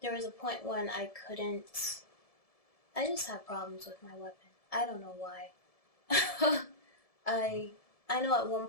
There was a point when I just had problems with my weapon. I don't know why. I know at one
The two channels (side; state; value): right; late; 1.7 ms